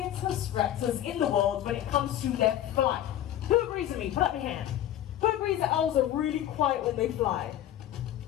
raptors in the world when it comes to their flight. Who agrees with me? Put up your hand. Who agrees that owls are really quiet when they fly?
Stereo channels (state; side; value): quieter; right; 12.1 dB